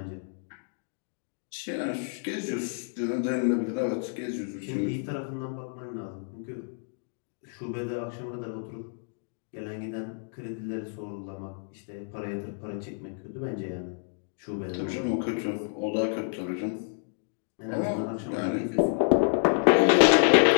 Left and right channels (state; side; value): silent; right; 59 dB below the other